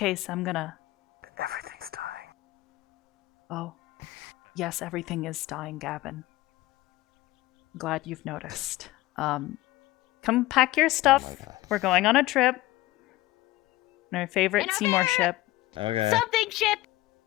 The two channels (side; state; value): right; quieter; 18.0 dB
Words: I'm gonna. Everything's dying. Oh, yes, everything is dying, Gavin. Glad you've noticed. Come pack your stuff. We're going on a trip. Our favorite Seymour ship. Okay. Something ship!